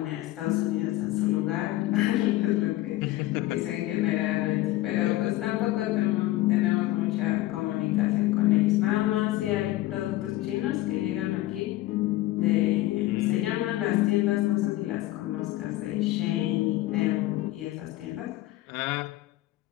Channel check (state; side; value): quieter; right; 16.8 dB